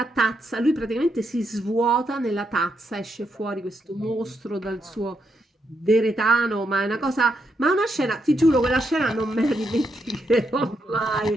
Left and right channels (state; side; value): normal; both; correlation 0.80